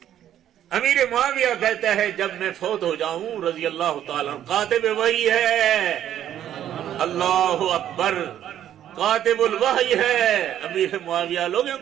امیر معاویہ کہتا ہے جب میں فوت ہو جاؤں رضی اللہ تعالیٰ، کاتب وحی ہے، اللہ اکبر، کاتب الوحی ہے امیر معاویہ. لوگوں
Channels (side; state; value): left; quieter; 11.0 dB